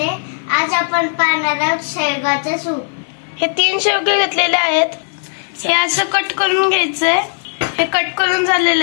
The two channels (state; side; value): silent; right; 55 dB below the other